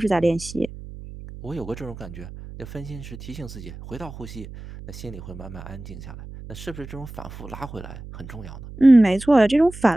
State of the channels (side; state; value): right; noise; hum, 14 dB below the sound